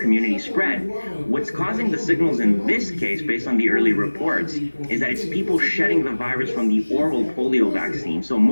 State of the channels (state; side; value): inverted; both; correlation -1.00